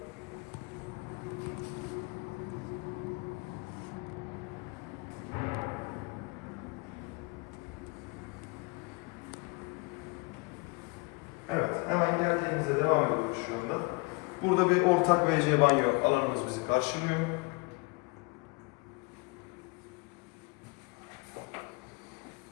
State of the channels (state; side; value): quieter; right; 28.8 dB